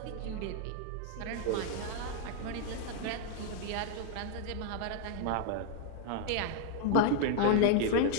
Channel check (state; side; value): different; both; correlation 0.00